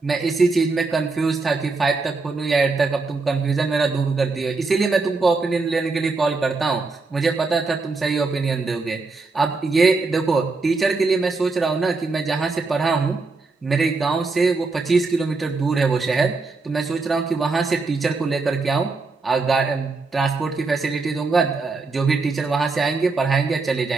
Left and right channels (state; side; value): quieter; left; 3.9 dB